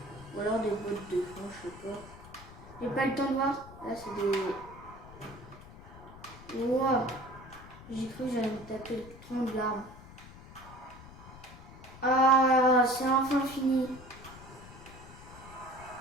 Ou alors des bottes de fond, je sais pas. J'ai pas le temps de voir. Là, c'est des... Wow. J'ai cru que j'allais me taper le tronc de l'arbre. Ah, c'est enfin fini.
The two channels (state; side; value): noise; left; rumble, 17 dB below the sound